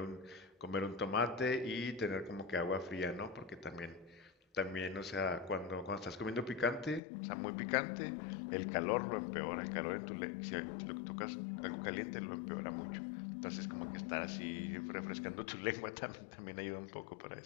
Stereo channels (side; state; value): right; drops out; at 7.0 s